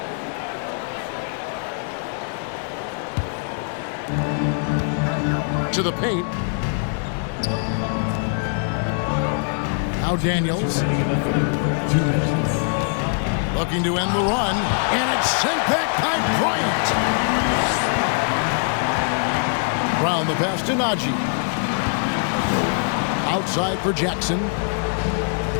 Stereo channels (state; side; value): silent; right; 64 dB below the other